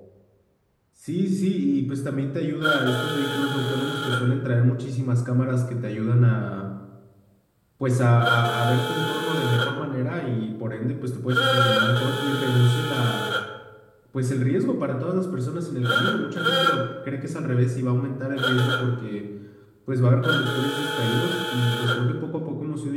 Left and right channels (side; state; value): both; identical; correlation 1.00